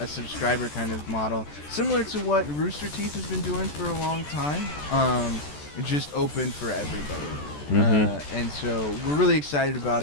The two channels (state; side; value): late; right; 14 ms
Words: subscriber kind of model, similar to what Rooster Teeth has been doing for a long time. Just open for everybody. And so we're really excited about